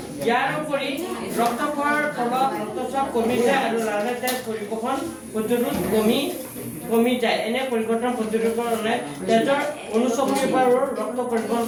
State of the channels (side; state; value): both; identical; correlation 1.00